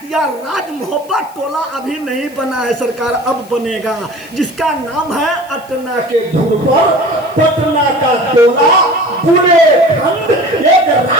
या राज मोहब्बत टोला अभी नहीं बना है सरकार, अब बनेगा, जिसका नाम है अटना के धुन पर पटना का टोला बुलेखंड, एक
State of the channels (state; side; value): noise; left; hiss, 25 dB below the sound